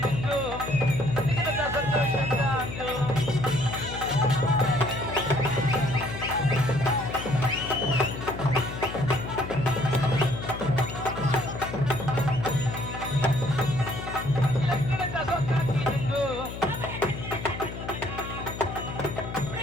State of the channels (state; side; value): noise; left; hum, 9 dB below the sound